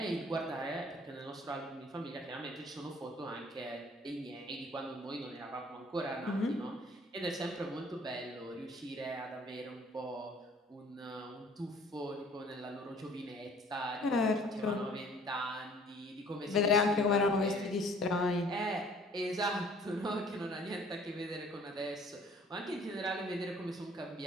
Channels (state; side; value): normal; both; correlation 0.55